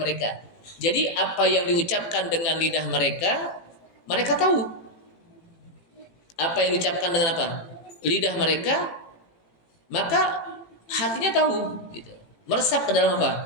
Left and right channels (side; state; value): right; late; 18 ms